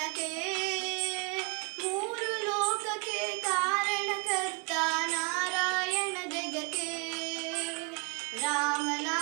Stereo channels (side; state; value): left; quieter; 33.8 dB